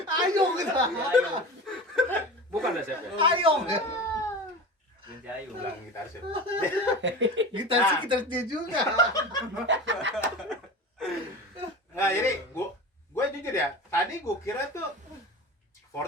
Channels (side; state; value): both; normal; correlation 0.31